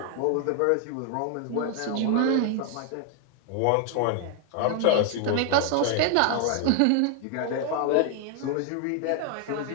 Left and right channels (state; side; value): different; both; correlation 0.00